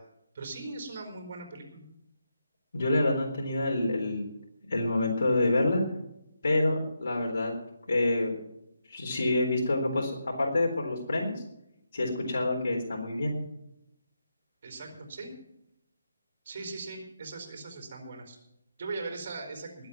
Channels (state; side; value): inverted; both; correlation -0.85